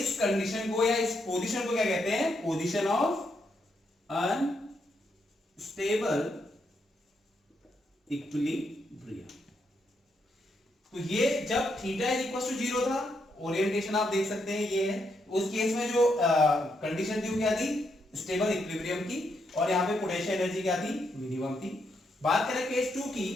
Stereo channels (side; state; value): both; normal; correlation 0.79